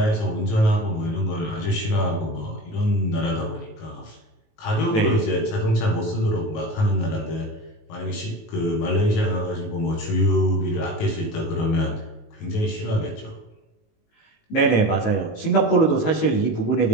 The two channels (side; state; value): right; late; 19 ms